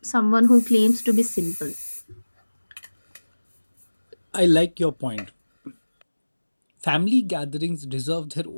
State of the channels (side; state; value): both; inverted; correlation -1.00